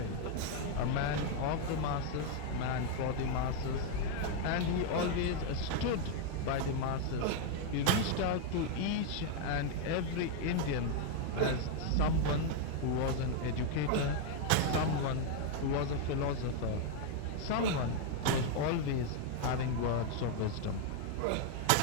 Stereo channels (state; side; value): different; both; correlation 0.00